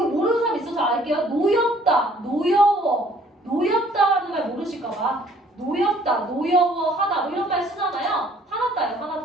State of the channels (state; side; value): normal; both; correlation 0.58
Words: 모르는 사람 있어서 알게요. 노엽다, 노엽다라는 말 모르실까봐. 노엽다, 노여워하다 뭐 이런 말 쓰잖아요.